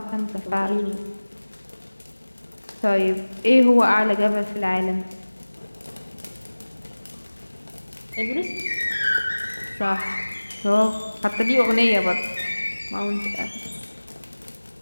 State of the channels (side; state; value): both; inverted; correlation -1.00